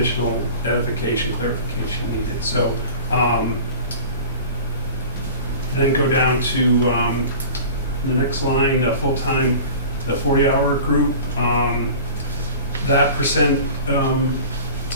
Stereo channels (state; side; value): inverted; both; correlation -0.39